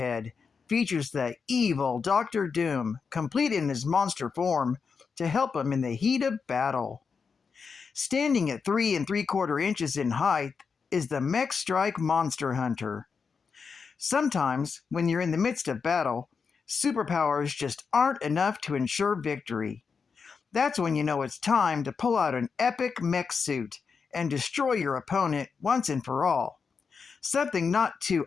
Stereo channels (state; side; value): quieter; right; 5.5 dB